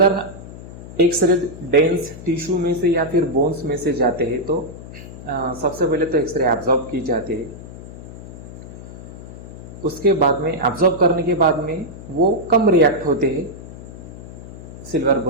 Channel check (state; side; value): noise; left; hum, 14 dB below the sound